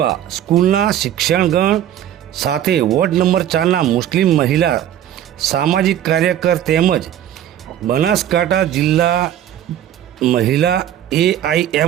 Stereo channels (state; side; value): quieter; left; 11.2 dB